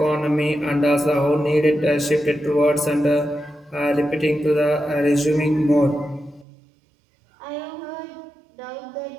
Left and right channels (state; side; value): drops out; left; at 6.5 s